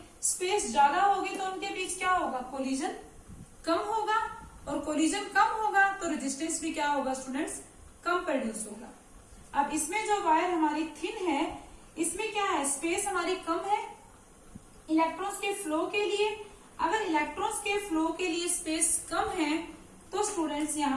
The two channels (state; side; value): identical; both; correlation 1.00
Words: स्पेस ज्यादा होगी तो उनके बीच क्या होगा? कोलिजन कम होगा, और कोलिजन कम होगा तो रेजिस्टेंस भी क्या होगा स्टूडेंट्स? कम प्रोड्यूस होगा। अब इसमें जो वायर हमारी थिन है इसमें क्या है? स्पेस हमारी कम है इलेक्ट्रॉन्स के फ्लो के लिए। अगर इलेक्ट्रॉन्स के फ्लो के लिए स्पेस कम है तो स्टूडेंट्स